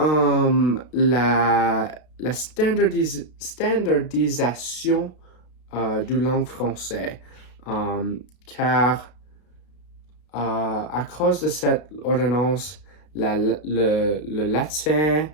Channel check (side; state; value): right; late; 32 ms